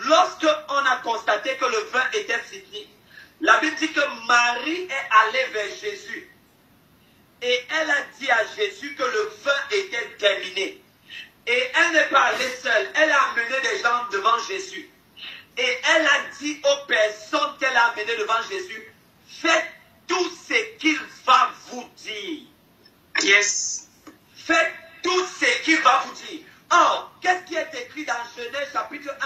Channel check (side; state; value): both; identical; correlation 1.00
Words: on a constaté que le vin était fini, la Bible dit que Marie est allée vers Jésus. Et elle a dit à Jésus que le vin était terminé. Et elle n'est pas allée seule. Elle a amené des gens devant Jésus. Et elle a dit aux personnes qu'elle a amenées devant Jésus, faites tout ce qu'il va vous dire. Yes. Faites tout ce qu'il va vous dire. Or, qu'est-ce qui est écrit dans Genèse chapitre